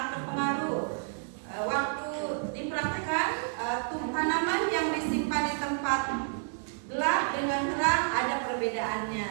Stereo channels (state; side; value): silent; left; digital silence